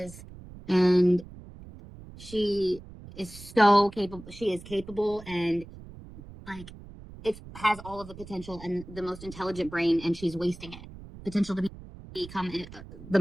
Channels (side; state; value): right; noise; rumble, 16 dB below the sound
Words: And she is so capable. She is capable, and like, it has all of the potential and the most intelligent brain, and she's wasting it. Potential to become the